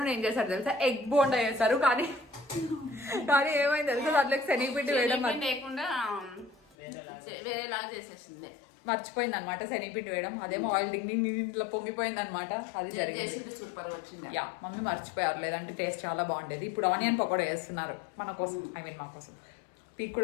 ఏం చేశారు తెలుసా? ఎగ్ బోండా చేస్తారు. కానీ ఏమైంది తెలుసా, దాంట్లోకి శనగపిండి వేయడం లేకుండా వేరేలాగా చేసేసింది. మర్చిపోయింది అనమాట శనగపిండి వేయడం. అదేమో ఆయిల్ ఇంట్లో పొంగిపోయింది అనమాట. అది జరిగింది. సూపర్ వచ్చింది. యా, మమ్మీ మర్చిపోయారు, లేదంటే టేస్ట్ చాలా బాగుండేది. ఇప్పుడు ఆనియన్ పకోడా వేస్తున్నారు మన కోసం, మా కోసం. పీక్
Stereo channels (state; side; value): drops out; right; at 6.8 s